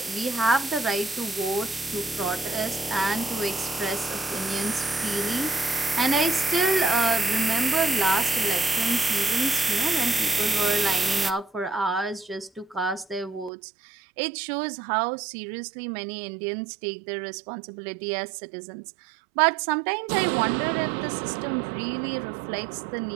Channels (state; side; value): drops out; left; at 13.5 s